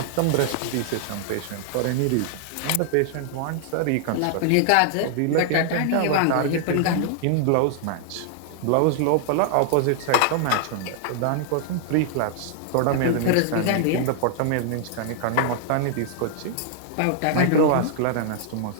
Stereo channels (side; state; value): both; different; correlation -0.01